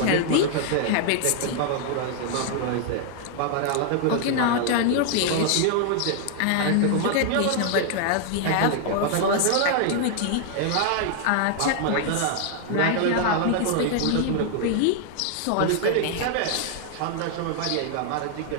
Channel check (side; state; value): both; different; correlation 0.00